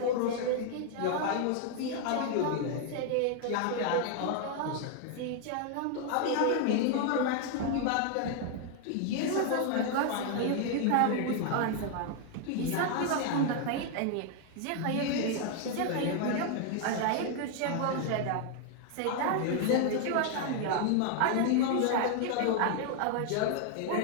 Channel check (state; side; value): different; both; correlation 0.00